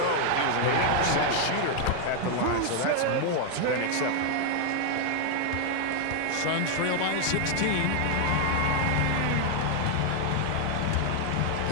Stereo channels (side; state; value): both; different; correlation 0.00